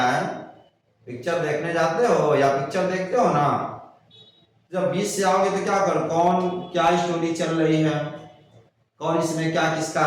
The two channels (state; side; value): identical; both; correlation 1.00